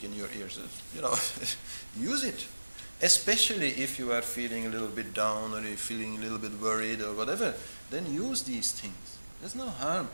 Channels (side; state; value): both; inverted; correlation -1.00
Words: in your ears, use it. Especially if you are feeling a little bit down or you're feeling a little bit worried or whatever, then use these things. There's no harm.